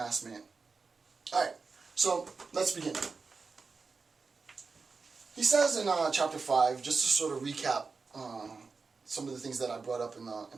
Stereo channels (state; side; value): quieter; left; 4.6 dB